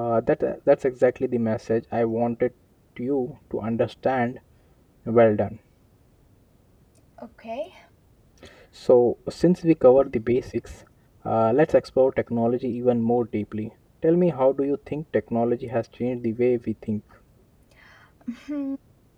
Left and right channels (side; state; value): both; identical; correlation 1.00